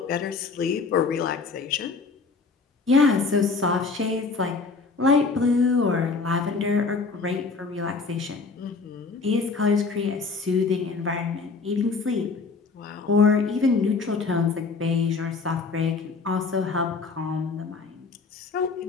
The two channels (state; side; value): quieter; right; 4.4 dB